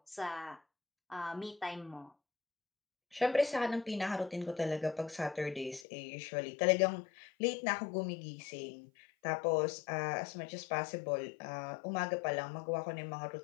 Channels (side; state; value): right; drops out; at 5.9 s